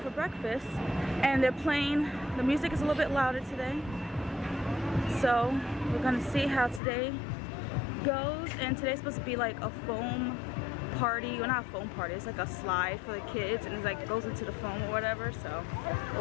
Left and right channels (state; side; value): drops out; right; at 6.8 s